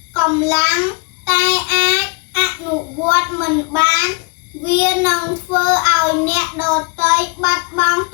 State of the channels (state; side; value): quieter; right; 33.9 dB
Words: កម្លាំងតែអាចអនុវត្តមិនបានវានឹងធ្វើឲ្យអ្នកដទៃបាត់បង់